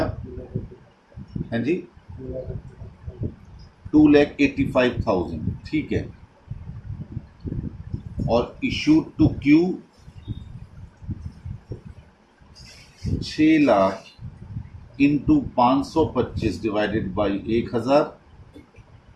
हैं जी, 2,85,000, ठीक है। और issued to Q 6 lakh into 525 divided by 1,000,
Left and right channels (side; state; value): both; identical; correlation 1.00